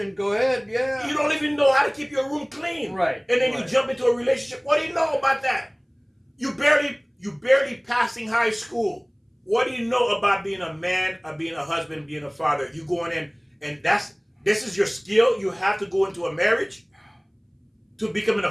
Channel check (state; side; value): identical; both; correlation 1.00